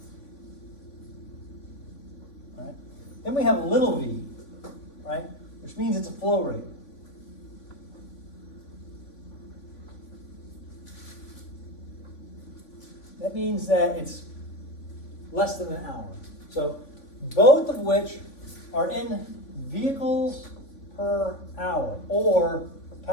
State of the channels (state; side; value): late; right; 3.5 ms